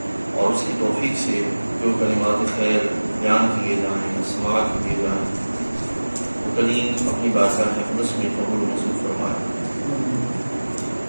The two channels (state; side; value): inverted; both; correlation -1.00